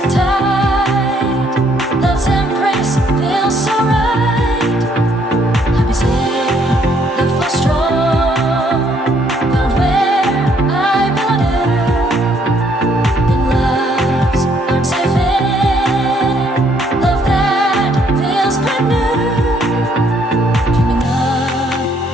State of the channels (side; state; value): both; normal; correlation 0.67